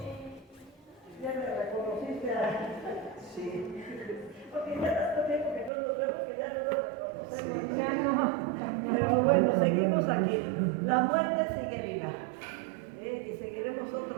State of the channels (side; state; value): left; drops out; at 5.7 s